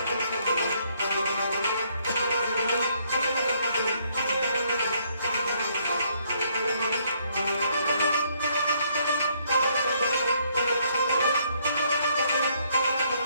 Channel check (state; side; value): inverted; both; correlation -0.69